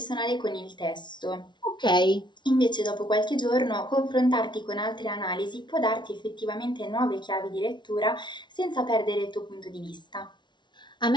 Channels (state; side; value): late; right; 0.22 ms